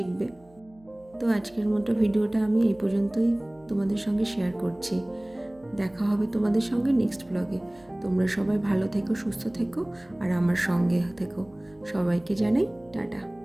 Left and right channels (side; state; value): right; noise; hum, 29 dB below the sound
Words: তো আজকের মতো ভিডিওটা আমি এই পর্যন্তই তোমাদের সঙ্গে শেয়ার করছি। দেখা হবে তোমাদের সঙ্গে নেক্সট ব্লগে। তোমরা সবাই ভালো থেকো, সুস্থ থেকো, আর আমার সঙ্গে থেকো। সবাইকে জানাই টাটা।